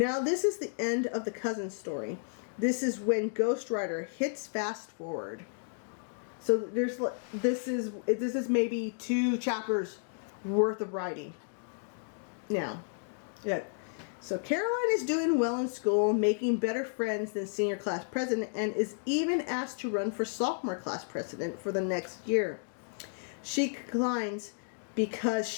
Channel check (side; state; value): right; silent; digital silence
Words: this is the end of the cousin story. This is when Ghost Rider hits fast forward. So this is maybe 2 chapters worth of writing. Now, yeah. So Caroline is doing well in school, making better friends than senior class president, and is even asked to run for sophomore class president for the next year. She declines because